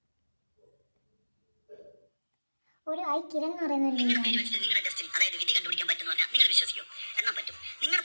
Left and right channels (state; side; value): inverted; both; correlation -1.00